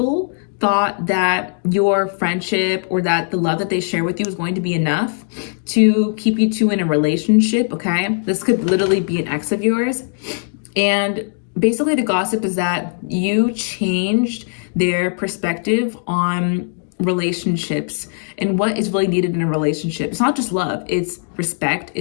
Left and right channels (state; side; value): silent; right; digital silence